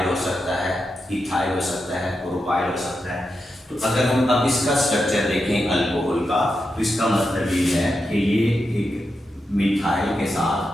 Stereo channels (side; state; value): both; normal; correlation 0.87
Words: हो सकता है, इथाइल हो सकता है, प्रोपाइल हो सकता है। तो अगर हम अब इसका स्ट्रक्चर देखें अल्कोहल का, तो इसका मतलब ये है कि ये एक मिथाइल के साथ,